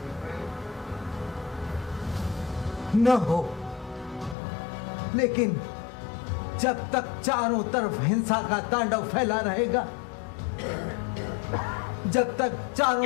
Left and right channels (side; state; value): right; drops out; at 4.4 s